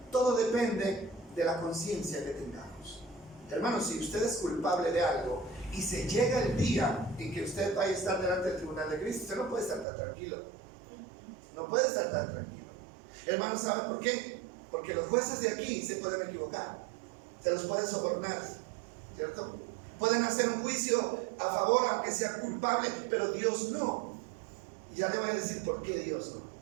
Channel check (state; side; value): drops out; left; at 9.9 s